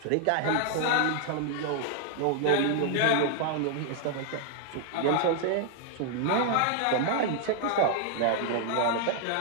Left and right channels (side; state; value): both; different; correlation 0.00